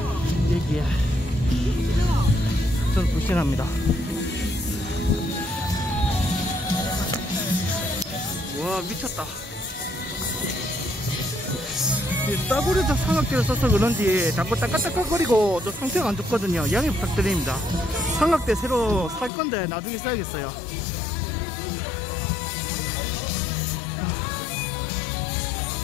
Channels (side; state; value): right; drops out; at 19.3 s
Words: 여기에 저는 불신합니다. 와, 미쳤다. 싸구려도 삼각대를 써서 그런지 자꾸 따깍따깍거리고 또 상태가 안 좋거든요. 양해 부탁드립니다. 삼각대 새로 살 건데 나중에 써야겠어요.